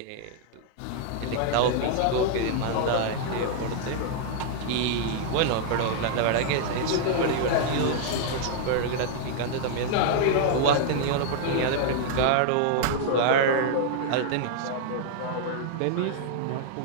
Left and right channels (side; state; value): both; different; correlation -0.01